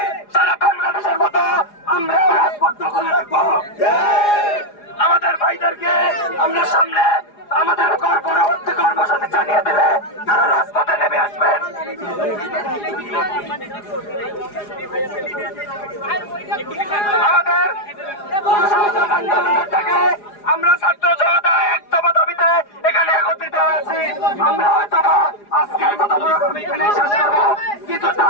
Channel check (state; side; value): late; right; 4.9 ms